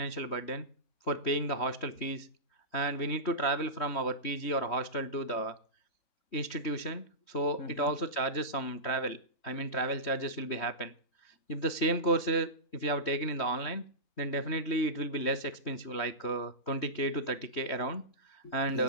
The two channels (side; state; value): right; late; 3.2 ms